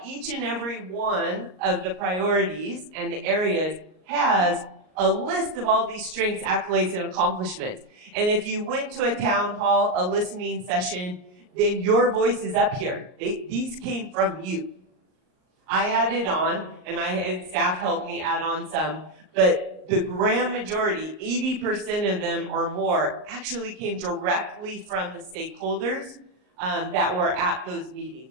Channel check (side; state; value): left; late; 38 ms